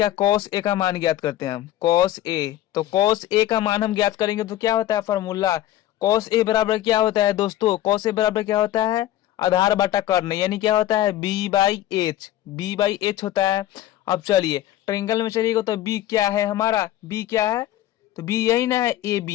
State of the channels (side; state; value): right; quieter; 13.5 dB